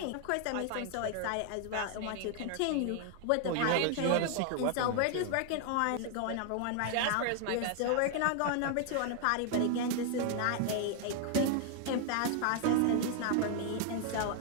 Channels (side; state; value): both; different; correlation 0.00